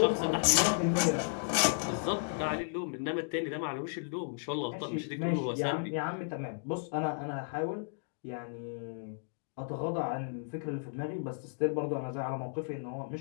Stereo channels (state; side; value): silent; right; digital silence